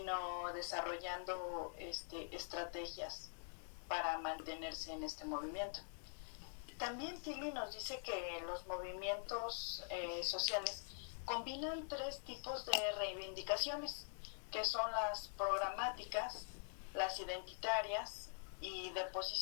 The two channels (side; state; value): right; silent; digital silence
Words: desarrollando estrategias para mantenerse en este movimiento. También Tilly nos dice que los movimientos sociales combinan tres tipos de reivindicaciones, que son las programáticas, las identitarias y de